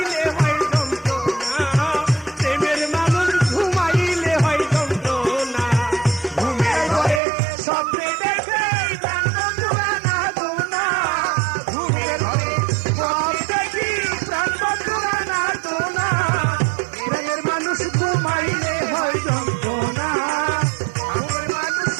হয় যন্ত্রণা, প্রেমের মানুষ ঘুমাইলে হয় যন্ত্রণা। ঘুমের ঘরে স্বপ্নে দেখে প্রাণ বন্ধুরা না দোনা, ঘুমের ঘরে স্বপ্নে দেখি প্রাণ বন্ধুরা না দোনা। প্রেমের মানুষ ঘুমাইলে হয় যন্ত্রণা, ঘুমের মানুষ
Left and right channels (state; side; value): drops out; left; at 7.2 s